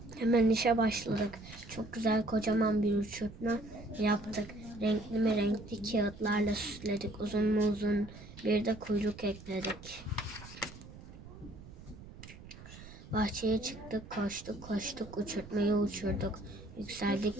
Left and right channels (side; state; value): right; noise; rumble, 16 dB below the sound